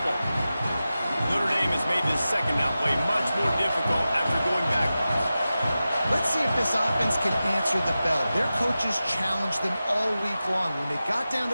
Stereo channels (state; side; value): inverted; both; correlation -0.94